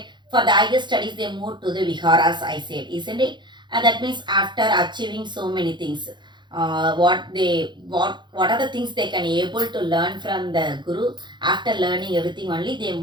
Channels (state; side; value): late; left; 0.22 ms